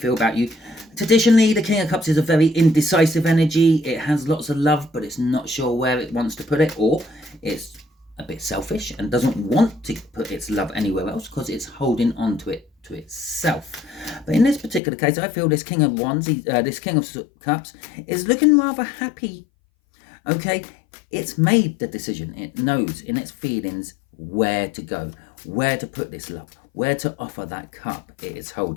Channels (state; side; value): drops out; right; at 14.8 s